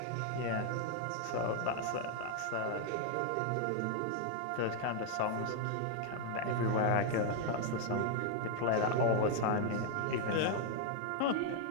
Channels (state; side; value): different; both; correlation 0.00